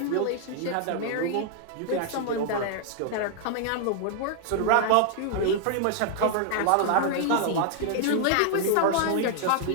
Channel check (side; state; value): both; different; correlation 0.00